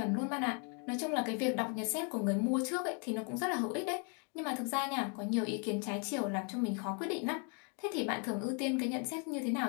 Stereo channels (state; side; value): quieter; right; 38.1 dB